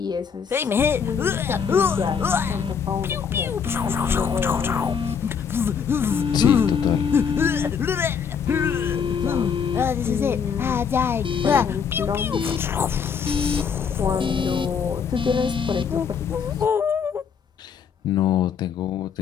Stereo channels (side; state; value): right; quieter; 6.8 dB